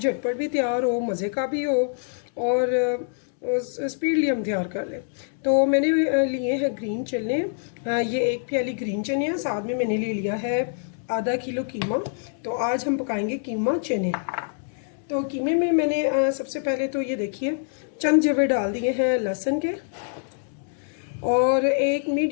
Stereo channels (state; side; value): silent; right; digital silence